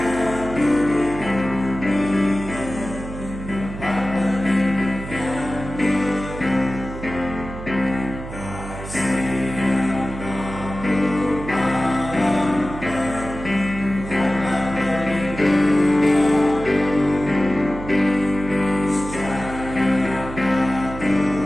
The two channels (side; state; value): right; noise; hum, 10 dB below the sound